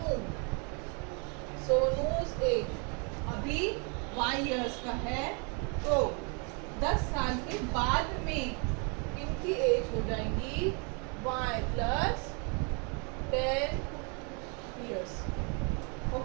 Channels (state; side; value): quieter; left; 35.4 dB